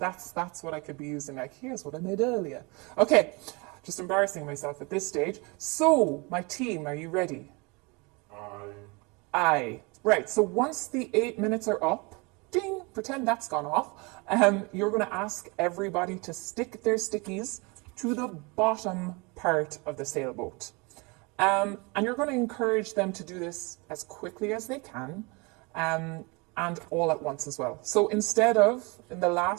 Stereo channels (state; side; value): quieter; left; 28.3 dB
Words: what I could be using, like, here's what I made earlier. Okay, just embarrassing myself at this stage. So, my team, are you ready? Aye. Right, so once the 8 minutes are up, ding, pretend that's gone off, you're going to ask everybody to stick their stickies to the bottom part of the sailboat. And you're going to encourage them to do this as quickly as they can, and all at once as well. So instead of, in the